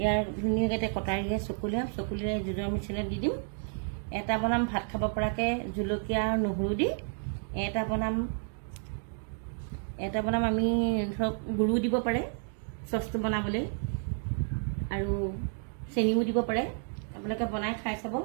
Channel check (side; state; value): left; silent; 57 dB below the other